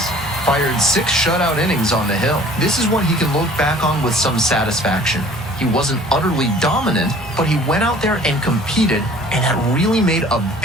fired 6 shutout innings on the hill. This is one he can look back on with some satisfaction. He wasn't utterly dominant, but he went out there and competed, and that really made a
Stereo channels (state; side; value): normal; both; correlation 0.50